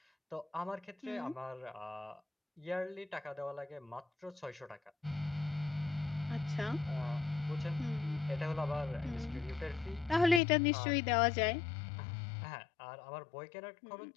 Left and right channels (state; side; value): drops out; right; at 10.4 s